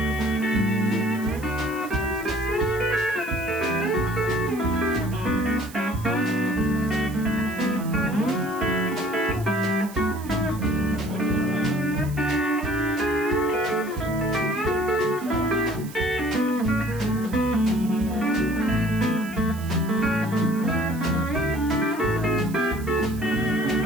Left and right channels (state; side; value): noise; right; hiss, 18 dB below the sound